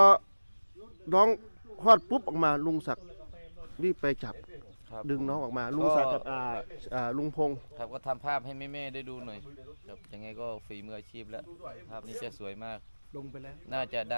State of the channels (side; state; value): both; inverted; correlation -1.00